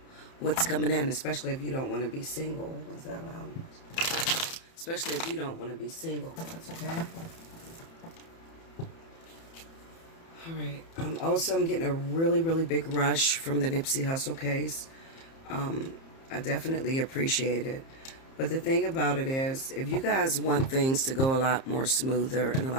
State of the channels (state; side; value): late; right; 30 ms